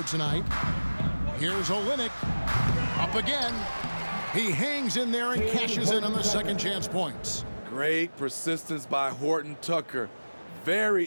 tonight. Here's Olynyk. Up again. He hangs in there and cashes in on the second chance points. Great persistence by Horton Tucker.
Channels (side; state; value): both; inverted; correlation -1.00